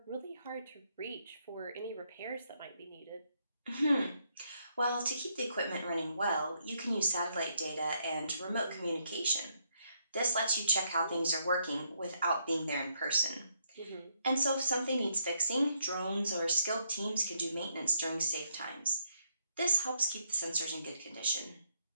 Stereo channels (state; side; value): inverted; both; correlation -0.75